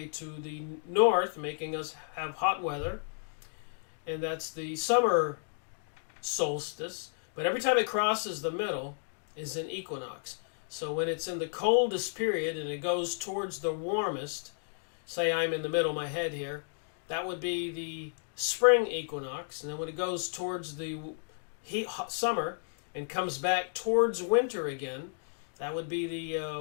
to the north, making us have hot weather. And that's the summer solstice. But every time it crosses the middle is an equinox. So when it's in the coldest period and it goes towards the warmest, say I'm in the middle of my head here, that would be the spring equinox. And then when it goes towards the summer and comes back towards winter again, that would be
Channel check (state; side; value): silent; right; digital silence